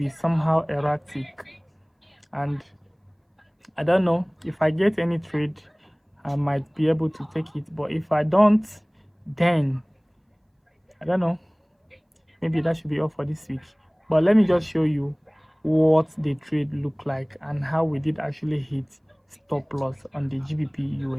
somehow erratic, and I don't know if I get any trade I might be able to take it, but if I don't, then I don't know, maybe that should be all for this week. But let me just show you what the trade looked like and how we did actually hit stop loss on the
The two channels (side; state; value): both; identical; correlation 1.00